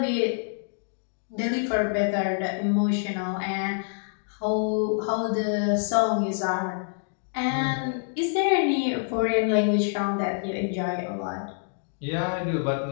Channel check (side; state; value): right; silent; digital silence